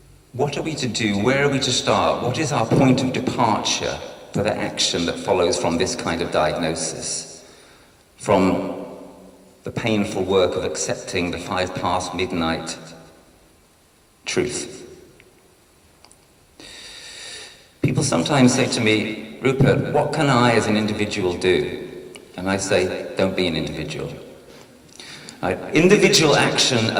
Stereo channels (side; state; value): both; identical; correlation 1.00